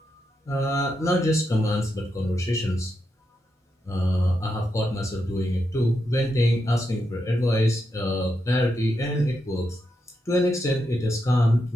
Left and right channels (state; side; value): normal; both; correlation 0.84